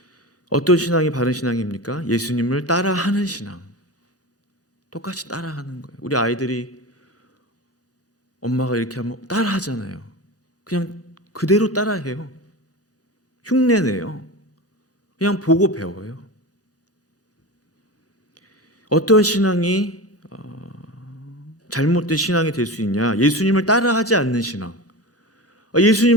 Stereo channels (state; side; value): normal; both; correlation 0.27